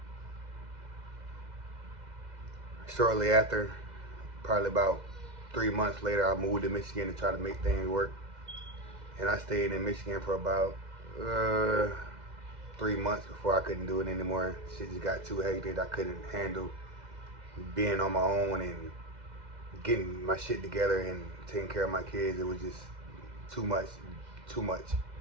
Shortly after, probably about 3 months later, I moved to Michigan to try to make things work. And I stayed in Michigan for about 3 months before I couldn't do it anymore. Shit just got too hectic. I couldn't handle being on my own and getting my shit together and taking care of my kids. It was just too much. You know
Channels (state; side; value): late; left; 2.0 ms